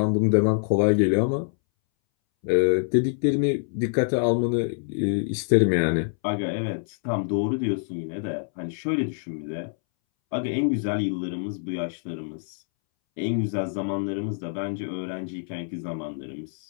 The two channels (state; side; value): silent; right; 61 dB below the other